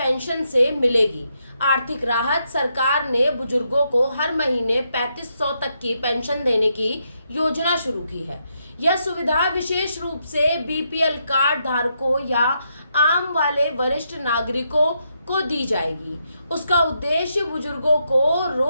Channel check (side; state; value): both; inverted; correlation -0.80